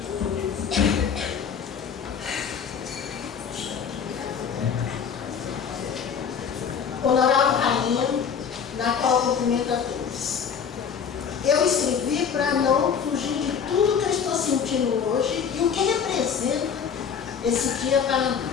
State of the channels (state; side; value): quieter; right; 7.1 dB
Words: Honorável Rainha, na qual cumprimento a todos. Eu escrevi para não fugir de tudo que eu estou sentindo hoje e o que representa esse dia para